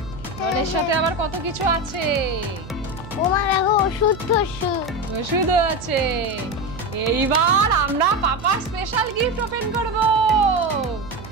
ডলের সাথে আবার কত কিছু আছে। ও মা দেখো ওষুধ, ওষুধও আছে। এইবার আমরা পাপা স্পেশাল গিফট ওপেন করব।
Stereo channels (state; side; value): noise; right; hum, 15 dB below the sound